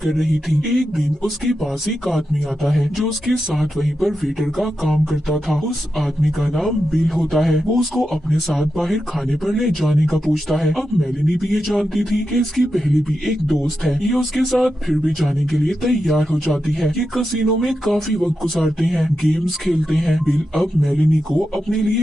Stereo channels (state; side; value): normal; both; correlation 0.89